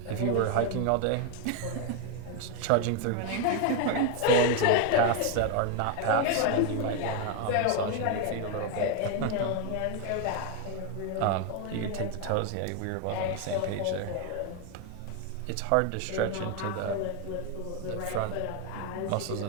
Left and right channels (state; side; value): different; both; correlation 0.01